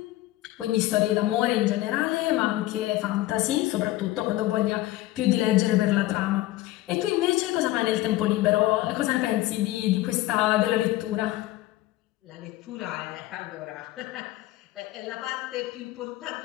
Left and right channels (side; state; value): right; quieter; 16.6 dB